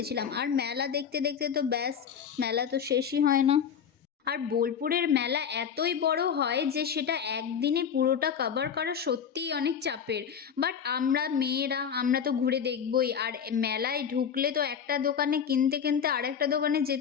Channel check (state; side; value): quieter; right; 7.7 dB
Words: আর মেলা দেখতে দেখতে তো ব্যাস, মেলা তো শেষই হয় না। আর বোলপুরের মেলা এতই বড় হয় যে সেটা একদিনে পুরোটা কভার করা সত্যিই অনেক চাপের। বাট আমরা মেয়েরা আমরা তো ঘুরে দেখবই, আর মেলায় ঢুকলে তো একটা দোকানে কিনতে কিনতে আর একটা দোকানে